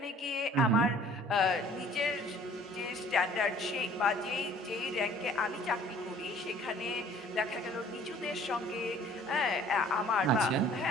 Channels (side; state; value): both; normal; correlation 0.54